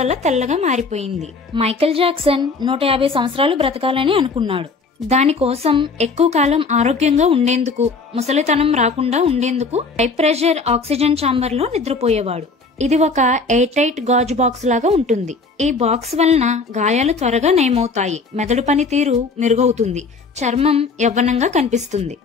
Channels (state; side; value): quieter; right; 4.1 dB